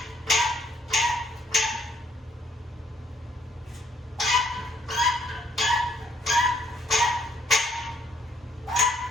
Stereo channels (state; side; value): normal; both; correlation 0.67